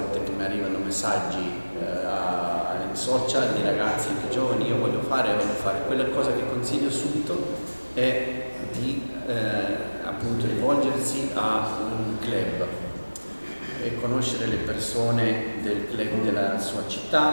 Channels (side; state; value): both; inverted; correlation -1.00